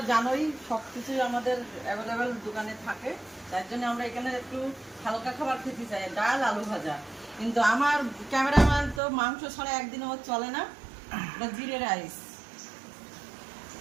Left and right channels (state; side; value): drops out; left; at 9.0 s